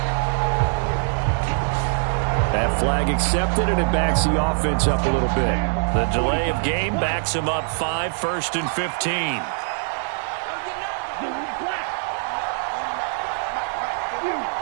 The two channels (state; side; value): silent; left; 63 dB below the other